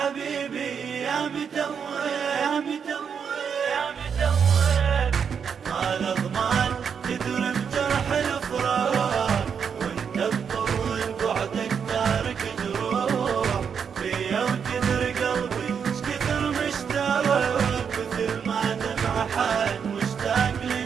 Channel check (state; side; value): quieter; left; 6.9 dB